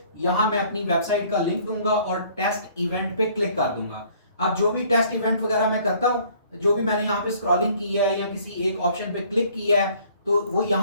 यहाँ मैं अपनी वेबसाइट का लिंक दूंगा और टेस्ट इवेंट पे क्लिक कर दूंगा। अब जो भी टेस्ट इवेंट वगैरह मैं करता हूँ, जो भी मैंने यहाँ पे स्क्रॉलिंग की है या किसी एक ऑप्शन पे क्लिक किया है, तो वो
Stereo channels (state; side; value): inverted; both; correlation -0.58